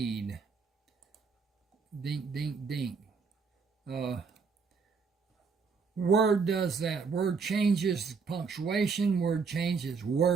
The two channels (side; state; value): left; quieter; 5.2 dB